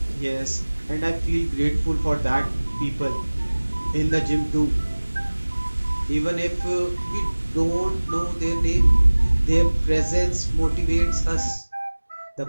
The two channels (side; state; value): both; inverted; correlation -1.00